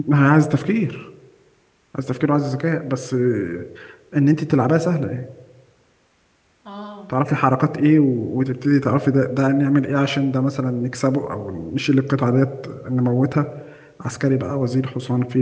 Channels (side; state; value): both; identical; correlation 1.00